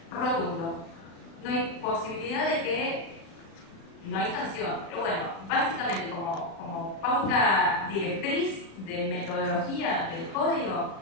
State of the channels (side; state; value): right; late; 36 ms